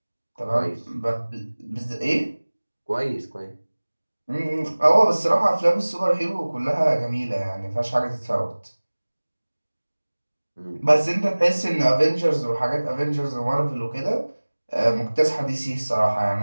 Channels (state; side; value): inverted; both; correlation -1.00